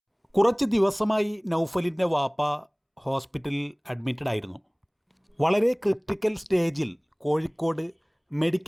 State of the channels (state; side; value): identical; both; correlation 1.00